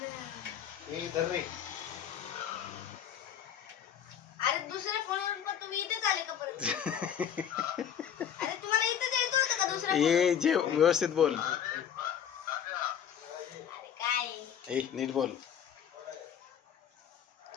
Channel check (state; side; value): quieter; right; 8.9 dB